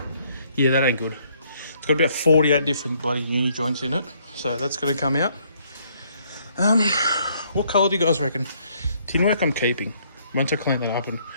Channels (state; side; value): inverted; both; correlation -0.67